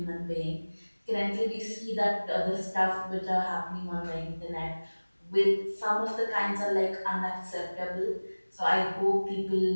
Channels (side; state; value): both; inverted; correlation -1.00